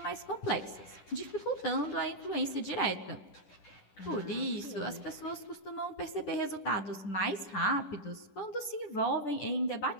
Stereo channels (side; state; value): right; late; 10 ms